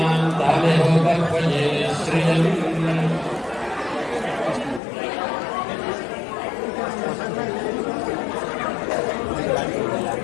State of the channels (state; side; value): drops out; right; at 4.8 s